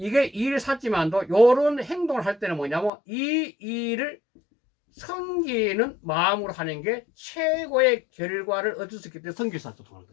일을 샀지만도 요런 행동을 할 때는 뭐냐면 이 일을 섬기는 마음으로 하는 게 최고의 결과를 얻을 수 있기 때문에 성기사도 통하는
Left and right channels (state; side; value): drops out; right; at 2.9 s